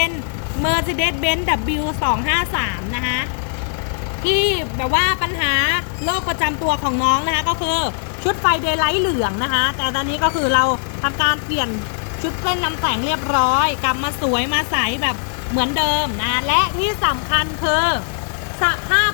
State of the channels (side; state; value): right; silent; digital silence